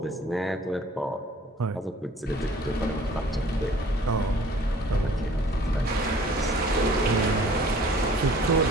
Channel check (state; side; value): normal; both; correlation 0.52